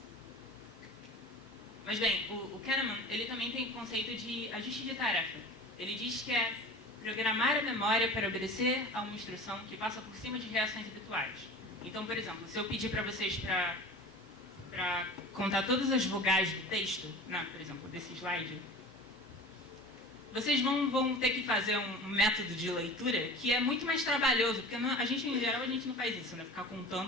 Mas bem, o Kahneman, ele também tem o conceito de ajuste de tarefa. Ele diz que é programar a memória para obedecer a uma instrução que passa por cima de reações habituais. Então, por exemplo, se eu pedir para vocês para contar todas as vogais do texto, né, por exemplo, desse slide, vocês vão ter que fazer um método de leitura que é muito mais trabalhoso, porque a gente, em geral, a gente não faz isso, né, ficar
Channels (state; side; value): normal; both; correlation 0.38